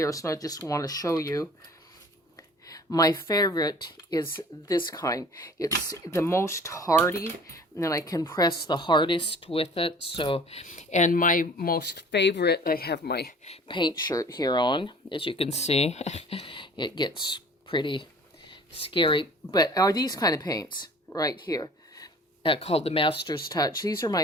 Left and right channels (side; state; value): both; normal; correlation 0.48